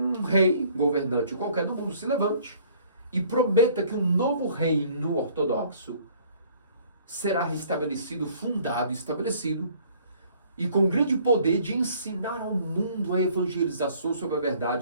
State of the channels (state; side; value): inverted; both; correlation -0.57